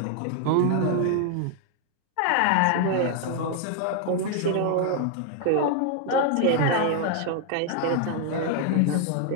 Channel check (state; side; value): different; both; correlation 0.00